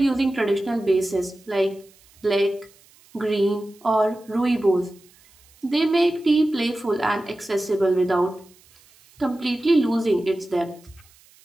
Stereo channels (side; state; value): right; noise; hiss, 29 dB below the sound